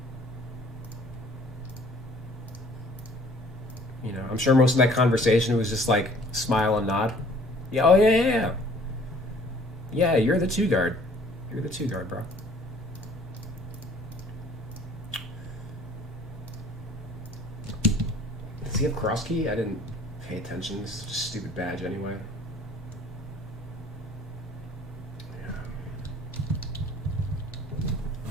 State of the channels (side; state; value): both; normal; correlation 0.54